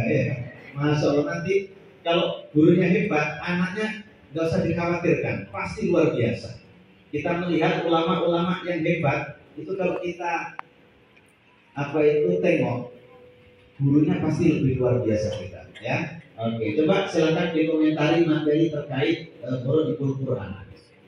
ya. Masya Allah, nanti kalau gurunya hebat, anaknya nggak usah dikhawatirkan, pasti luar biasa. Kita melihat ulama-ulama yang hebat itu kalau kita tengok, gurunya pasti lebih luar biasa kita ya. Oke, coba silakan dikomentari materi terkait Qur'an Quran.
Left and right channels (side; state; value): both; identical; correlation 1.00